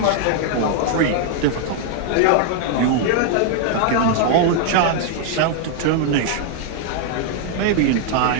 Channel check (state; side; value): different; both; correlation 0.00